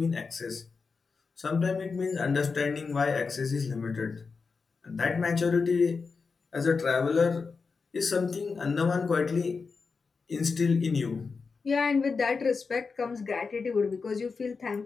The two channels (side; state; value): right; quieter; 4.8 dB